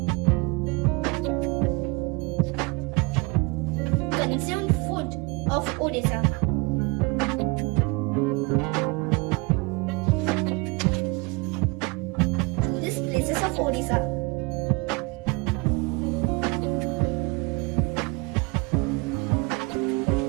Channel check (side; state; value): left; quieter; 26.9 dB